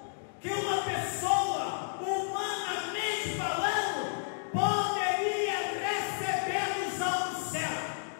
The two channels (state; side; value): silent; right; digital silence